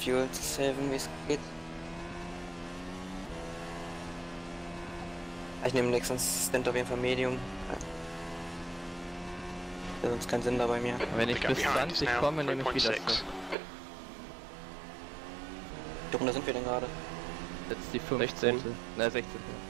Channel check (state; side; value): drops out; left; at 13.6 s